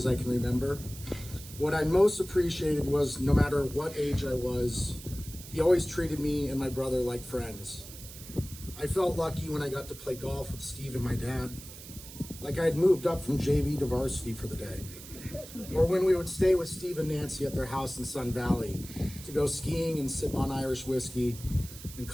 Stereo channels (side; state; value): right; noise; hiss, 15 dB below the sound